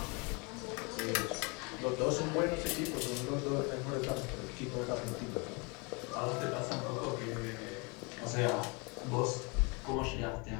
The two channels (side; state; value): right; quieter; 30.6 dB